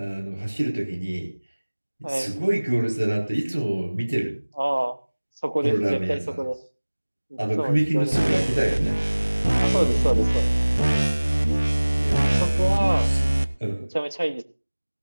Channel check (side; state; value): both; inverted; correlation -1.00